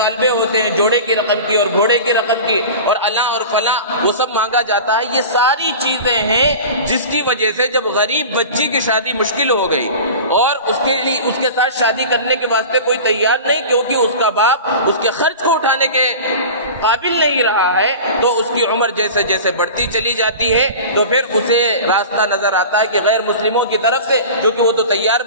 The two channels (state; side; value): inverted; both; correlation -0.35